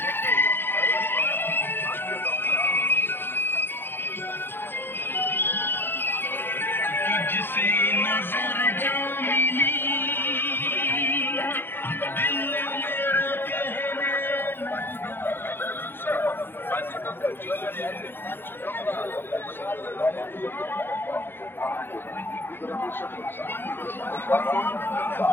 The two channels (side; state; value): right; late; 0.10 ms